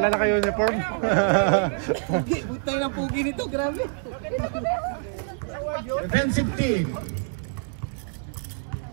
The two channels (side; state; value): left; silent; digital silence